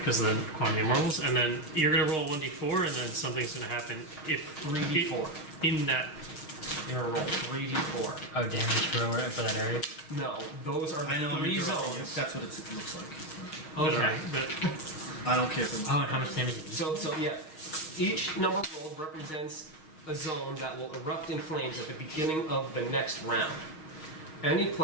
the quantity rolls, and then you're gonna roll 1d4, and then something's gonna happen if 3d4. in that. You're gonna roll 3d4. Oh, damage for that area? No, those are I know the I'm 3 interrupting you. zones. That's what it looks like. Okay. But I don't care for Oh, and how much damage did you So yeah, each number rolled represents a zone that will erupt in flames at the beginning of the next round. Any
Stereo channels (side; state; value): right; late; 6.4 ms